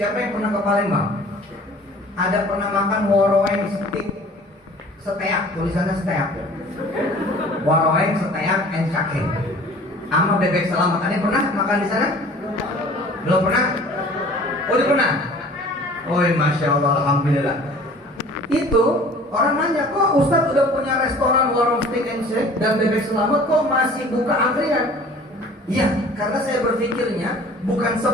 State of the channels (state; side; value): normal; both; correlation 0.48